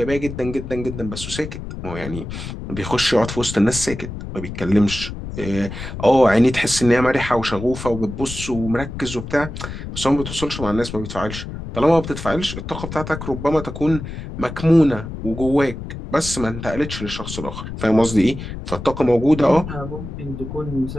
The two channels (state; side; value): noise; left; rumble, 9 dB below the sound